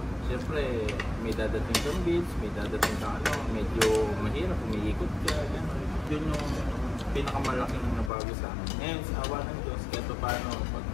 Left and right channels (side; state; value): right; drops out; at 8.1 s